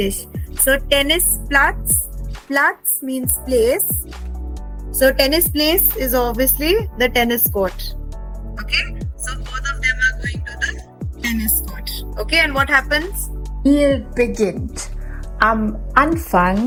So, tennis platz. Platz means place. So, tennis place is obviously the tennis court. Okay? So, both of them are going to the tennis court. Okay, and what happens? beginnt. Am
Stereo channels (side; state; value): both; identical; correlation 1.00